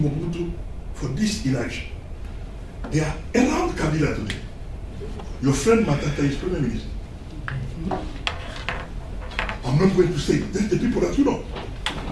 Mobutu for this inaction. They are around Kabila today. Your friend Matata is Prime Minister. I'm not going to say, that's the people that you know.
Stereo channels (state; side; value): identical; both; correlation 1.00